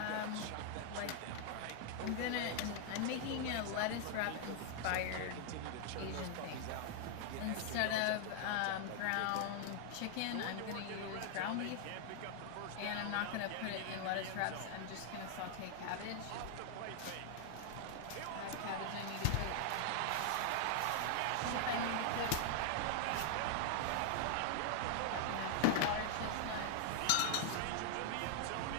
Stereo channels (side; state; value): both; different; correlation 0.00